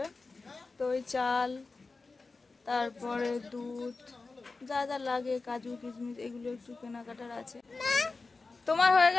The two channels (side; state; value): right; quieter; 3.9 dB